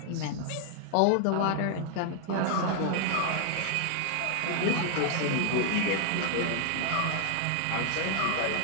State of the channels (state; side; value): different; both; correlation 0.00